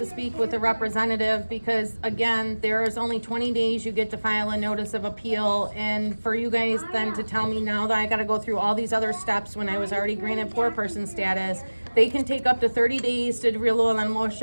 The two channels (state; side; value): inverted; both; correlation -1.00